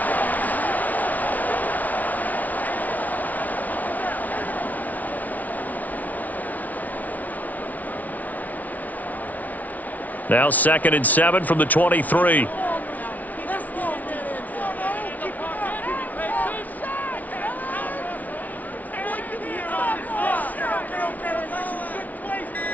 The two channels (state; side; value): late; right; 0.074 ms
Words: Now 2nd and 7 from the 23.